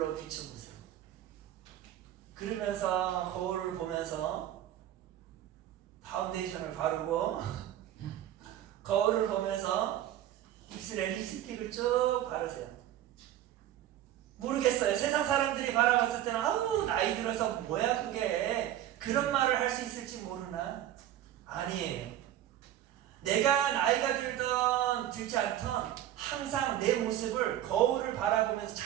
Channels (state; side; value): quieter; left; 12.3 dB